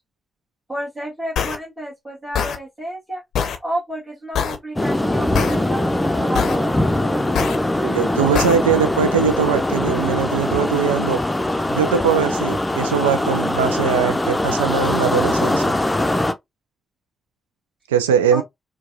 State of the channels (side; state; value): both; normal; correlation 0.46